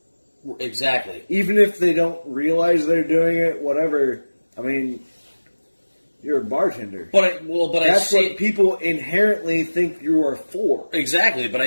Exactly. Even if they don't realize they're doing it, whatever. I mean, you're a bartender. But I That's see what it, people inherently think you are for. exactly. But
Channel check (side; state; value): both; inverted; correlation -1.00